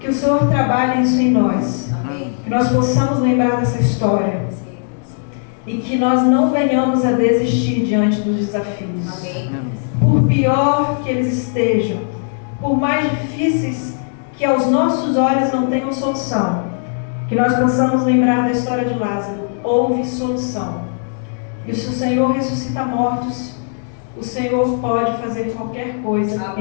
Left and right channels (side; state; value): right; silent; 67 dB below the other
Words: Que o Senhor trabalhe isso em nós. Que nós possamos lembrar dessa história. E que nós não venhamos a desistir diante dos desafios. Por pior que eles estejam, por mais difíceis que aos nossos olhos não tenham solução, que nós possamos lembrar da história de Lázaro. Houve solução. E se o Senhor ressuscita mortos, o Senhor pode fazer qualquer coisa